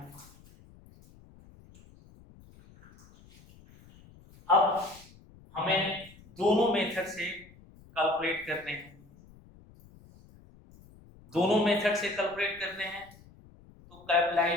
अब हमें दोनों मेथड से कैलकुलेट करने हैं. दोनों मेथड से कैलकुलेट करने हैं तो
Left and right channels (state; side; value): noise; left; rumble, 24 dB below the sound